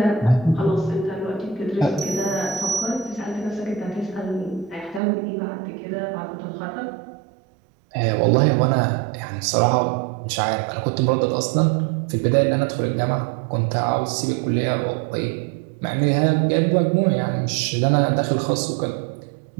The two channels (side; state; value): left; drops out; at 5.0 s